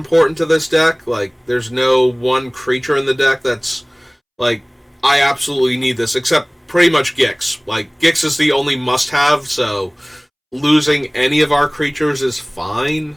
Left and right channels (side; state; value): both; identical; correlation 1.00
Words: to this deck. Like, there's no one creature in the deck that's, like, I absolutely need this, except pretty much Gix. Like, Gix is the only must-have, so losing any of our creatures is fine,